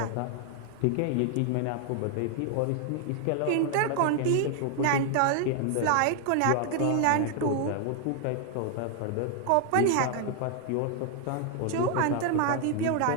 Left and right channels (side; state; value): both; different; correlation 0.00